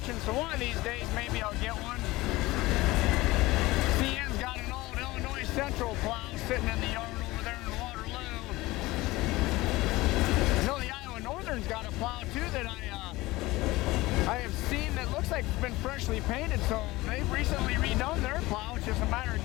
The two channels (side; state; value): right; quieter; 19.8 dB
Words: so one of these days maybe I'll get one. CN's got an old Illinois Central plow sitting in the yard over there in Waterloo. I know the Iowa Northern's got a plow too that I have seen that looks like it's been freshly painted, so they've recently redone their plow. It's just a matter of